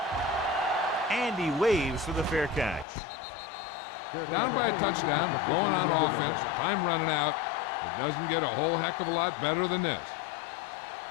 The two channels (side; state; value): right; drops out; at 2.9 s